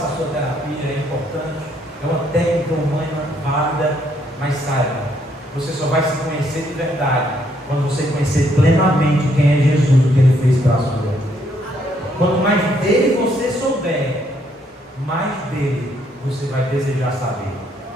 a sua terapia, é importante, é uma técnica humana válida, mas saiba, você só vai se conhecer de verdade quando você conhecer plenamente quem é Jesus, o que Ele fez para a sua vida. Quanto mais dele você souber, mais dele você vai desejar saber.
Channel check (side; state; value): both; normal; correlation 0.71